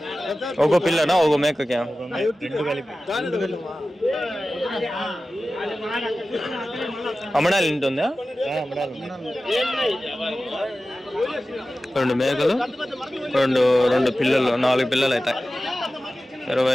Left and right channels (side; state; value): both; normal; correlation 0.95